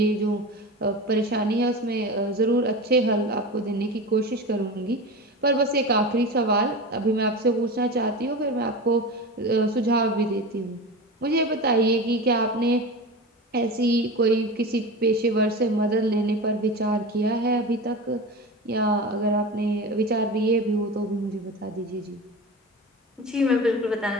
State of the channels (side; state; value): both; normal; correlation 0.28